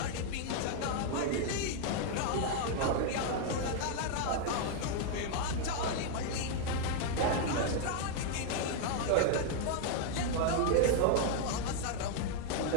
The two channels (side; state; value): both; different; correlation 0.00